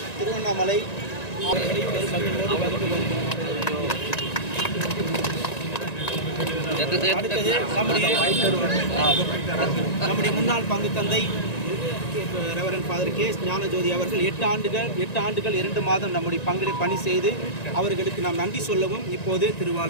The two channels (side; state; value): right; late; 1.9 ms